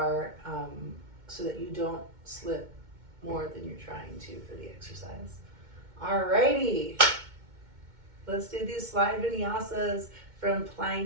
so that you don't slip more than you're trying to for the exercise. Alrighty, let's do these slide vinyasas from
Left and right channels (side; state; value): left; late; 2.2 ms